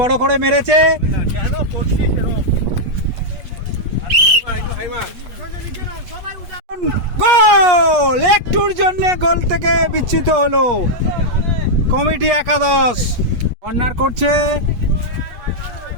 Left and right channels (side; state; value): left; late; 8.3 ms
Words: করে মেরেছে। গোল! একটুর জন্য গোল থেকে বিচ্যুত হলো কমিটি একাদশ। কর্নার করছে